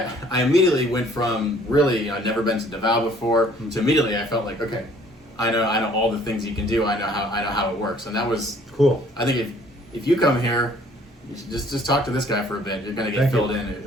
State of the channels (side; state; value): both; normal; correlation 0.58